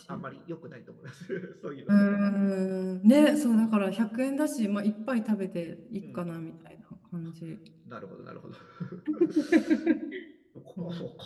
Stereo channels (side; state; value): both; identical; correlation 1.00